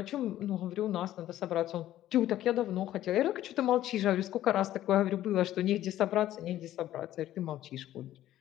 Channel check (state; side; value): quieter; right; 13.3 dB